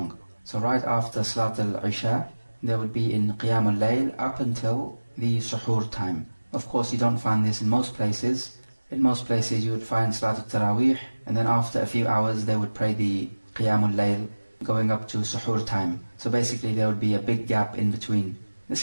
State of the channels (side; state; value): both; inverted; correlation -1.00